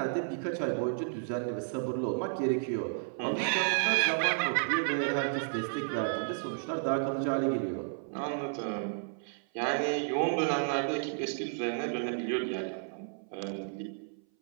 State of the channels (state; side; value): silent; left; 56 dB below the other